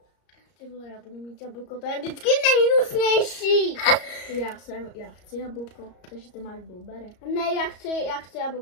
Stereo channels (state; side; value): late; right; 34 ms